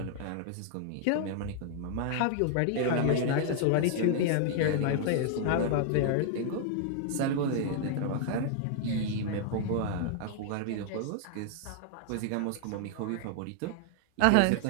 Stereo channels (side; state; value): both; different; correlation -0.01